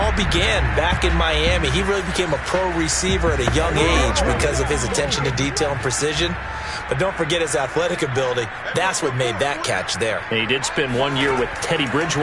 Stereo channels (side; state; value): both; identical; correlation 1.00